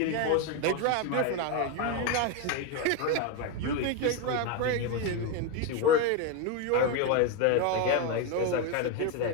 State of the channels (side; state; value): both; different; correlation 0.02